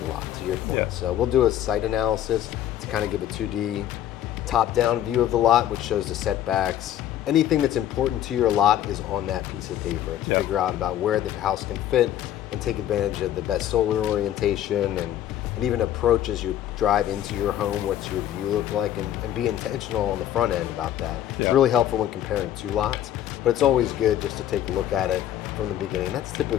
lot, to your point. Yeah. So we'll do a site analysis to kind of give a 2D top-down view of the lot, which shows the setbacks. Anything that's important to your lot is on that piece of paper to Yeah. figure out about where the house can fit and take advantage of the best solar orientation and even approach as you drive into your home, what's your view look like, and be intentional on the front end about that. It's Yeah. really helpful when comparing two lots, but it's always good just to take a look at it from the beginning. That's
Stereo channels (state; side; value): quieter; right; 11.7 dB